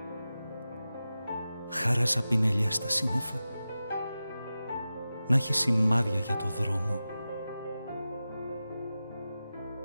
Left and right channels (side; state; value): both; inverted; correlation -0.94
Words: Χάραζα πινελιά στα σύννεφα, να έχει σημάδια για το δρόμο.